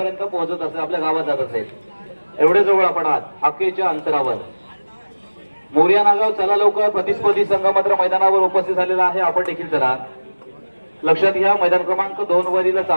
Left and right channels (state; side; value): inverted; both; correlation -1.00